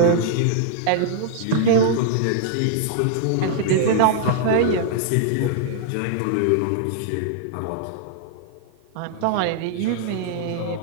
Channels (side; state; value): both; different; correlation -0.01